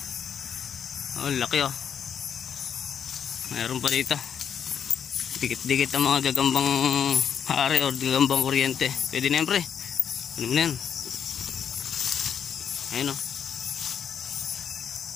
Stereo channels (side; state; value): right; quieter; 8.0 dB